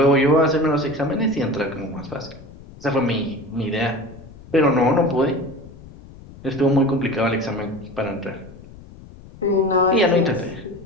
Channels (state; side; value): noise; left; rumble, 19 dB below the sound